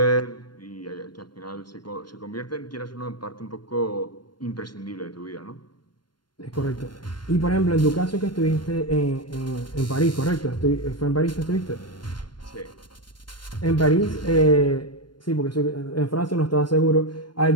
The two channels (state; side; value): late; right; 0.72 ms